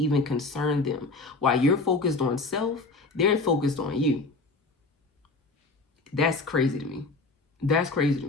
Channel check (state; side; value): quieter; right; 3.5 dB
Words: concern them. While you're focused on self, they're focused on you. That's crazy to me. That's crazy to